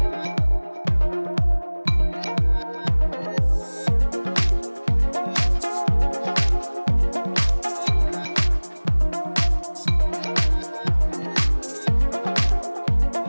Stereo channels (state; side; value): inverted; both; correlation -1.00